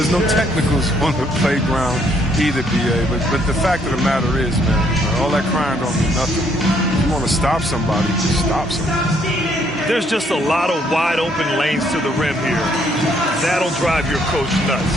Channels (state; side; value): normal; both; correlation 0.68